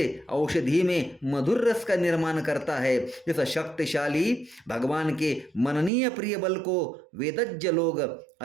औषधि में मधुर रस का निर्माण करता है। इस शक्तिशाली भगवान के मननीय प्रिय बल को वेदज्ञ लोग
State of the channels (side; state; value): left; drops out; at 5.9 s